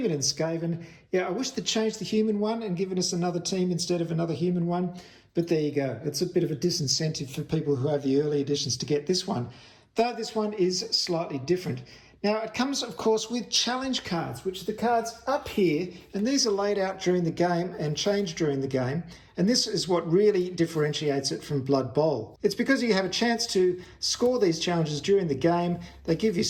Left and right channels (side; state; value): both; identical; correlation 1.00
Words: and Skaven. Yeah, I wish they'd changed the human one and given us another team instead of another human one. But there you go. It's a bit of a disincentive for people who have the early editions to get this one, though this one is slightly different. Now, it comes, of course, with challenge cards, which are the cards up here, and these are laid out during the game and changed during the game, and this is what really differentiates it from Blood Bowl. It's because you have a chance to score these challenges during the game, they give you